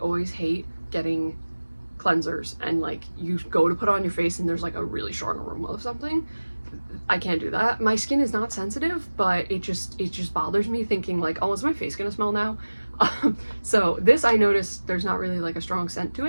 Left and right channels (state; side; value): inverted; both; correlation -1.00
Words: always hate getting cleansers and like you go to put it on your face and there's like a really strong aroma of something. I can't do that. My skin is not sensitive, but it just bothers me thinking like, oh, is my face gonna smell now? So this, I noticed there's not really like a strong scent to